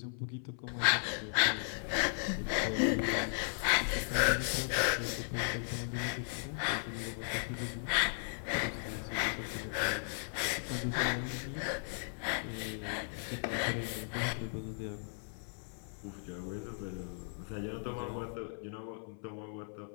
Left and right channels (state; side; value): silent; right; 54 dB below the other